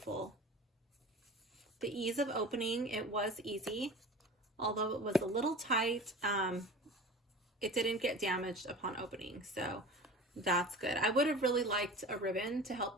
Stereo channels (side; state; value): both; normal; correlation 0.37